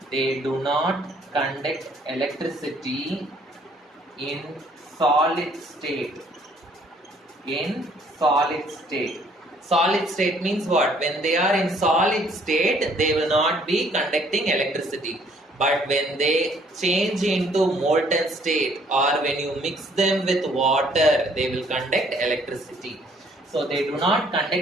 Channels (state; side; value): normal; both; correlation 0.62